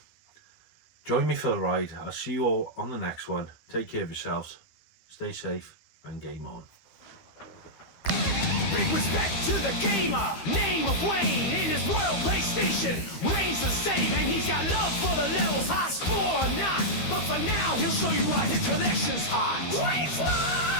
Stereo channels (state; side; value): late; right; 13 ms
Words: Join me for the ride. I'll see you all on the next one. Take care of yourselves. Stay safe and game on. Big respect to the gamer, name of Wayne. In his world PlayStation, Wayne's the same, and he's got love for the levels, high score or not. But for now, he'll show you why his collection's hot. Wayne's World!